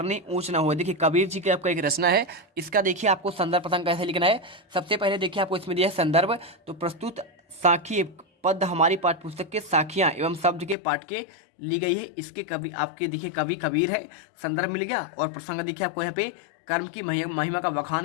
ऊंच ना हो। देखिए कबीर जी की आपका एक रचना है, इसका देखिए आपको संदर्भ प्रसंग कैसे लिखना है। सबसे पहले देखिए आपको इसमें दिया है संदर्भ। तो प्रस्तुत साखी पद हमारी पाठ्य पुस्तक के साखियां एवं शब्द के पाठ के ली गई है। इसके कवि आपके देखिए कवि कबीर है, संदर्भ मिल गया। और प्रसंग देखिए आपको यहाँ पे कर्म की महिमा का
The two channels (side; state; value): right; drops out; at 10.8 s